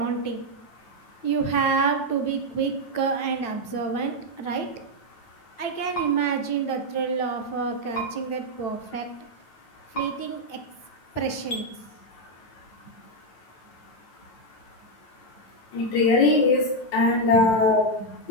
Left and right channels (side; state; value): right; late; 9.0 ms